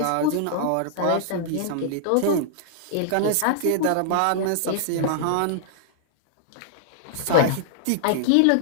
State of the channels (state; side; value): different; both; correlation -0.01